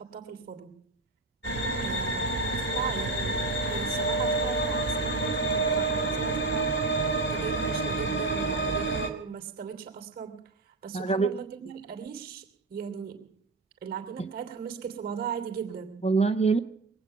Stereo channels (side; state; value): left; quieter; 3.2 dB